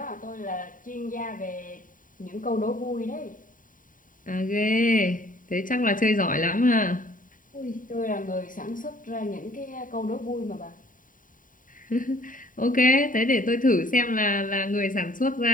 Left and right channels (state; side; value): late; right; 0.39 ms